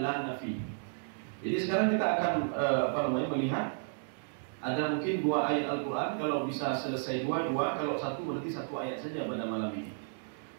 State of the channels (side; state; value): left; silent; digital silence